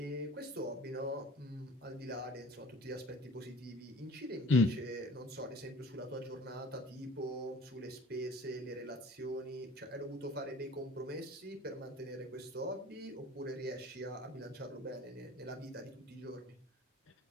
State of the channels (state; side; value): normal; both; correlation 0.46